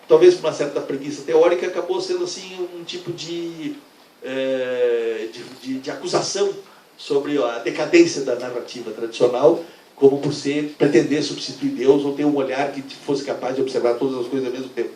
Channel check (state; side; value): identical; both; correlation 1.00